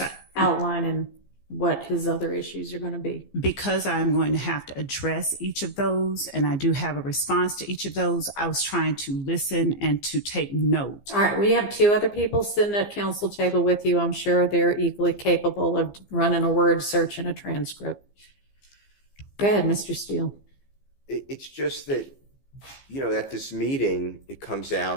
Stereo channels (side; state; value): right; late; 15 ms